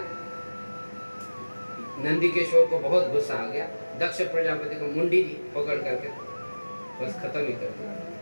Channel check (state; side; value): inverted; both; correlation -1.00